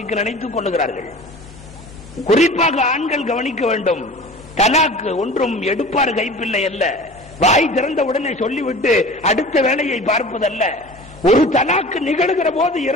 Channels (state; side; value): normal; both; correlation 0.40